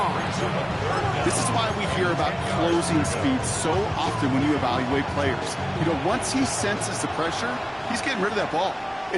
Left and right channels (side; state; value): both; identical; correlation 1.00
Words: This is why we hear about closing speed so often when you evaluate players. You know, once he senses the pressure, he's getting rid of that ball.